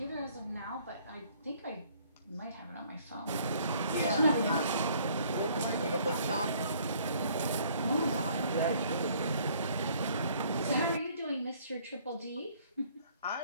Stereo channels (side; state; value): both; inverted; correlation -0.60